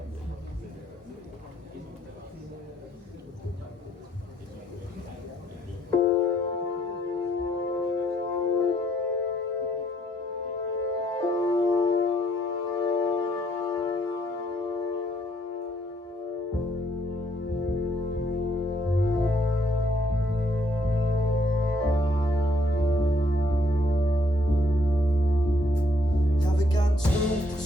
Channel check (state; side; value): normal; both; correlation 0.69